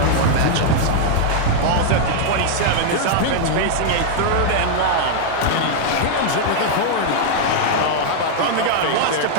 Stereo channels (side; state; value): both; different; correlation -0.01